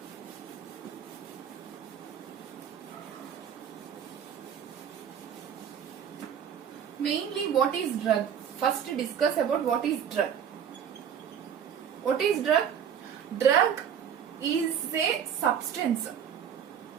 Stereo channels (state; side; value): quieter; left; 8.4 dB